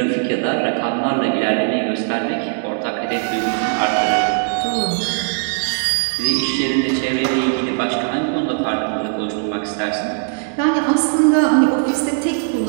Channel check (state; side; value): silent; left; 67 dB below the other